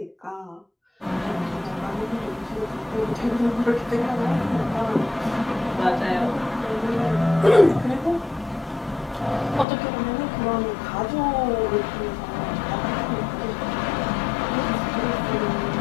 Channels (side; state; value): right; drops out; at 9.7 s